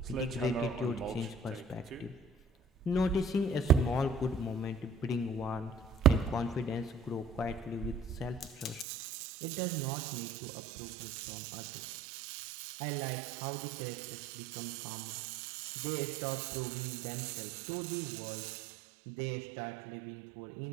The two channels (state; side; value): drops out; left; at 8.8 s